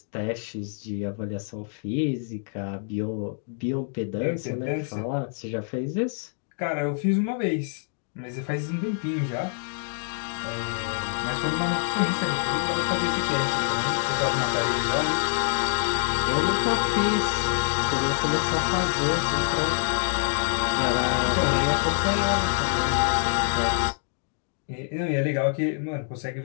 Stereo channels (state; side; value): silent; right; 61 dB below the other